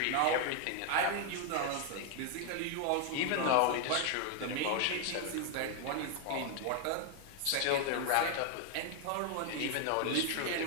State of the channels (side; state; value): both; different; correlation 0.00